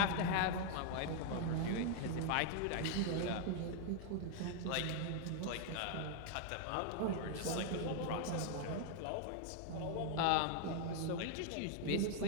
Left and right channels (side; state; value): both; different; correlation 0.00